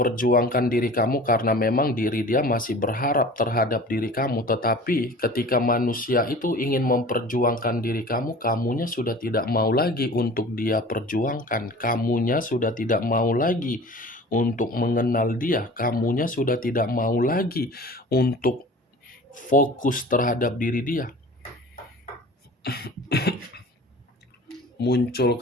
diri kamu, karena memang diri dia masih berharap terhadap diri kamu. Tetapi ketika manusia itu ingin memperjuangkan diri kamu, kamunya sudah tidak mau lagi untuk dia perjuangkan. Kamunya sudah tidak mau lagi untuk mengenal dia. Kamunya sudah tidak mau lagi untuk fokus terhadap diri dia. Muncul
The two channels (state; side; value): normal; both; correlation 0.42